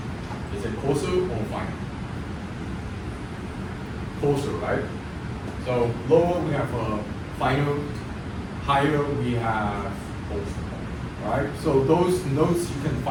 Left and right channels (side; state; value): both; identical; correlation 1.00